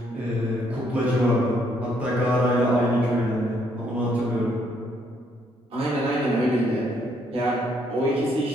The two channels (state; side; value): normal; both; correlation 0.70